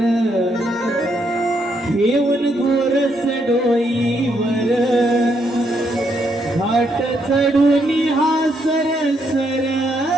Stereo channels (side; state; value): both; normal; correlation 0.75